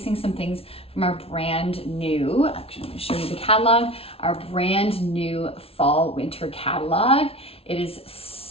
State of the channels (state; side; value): late; right; 0.28 ms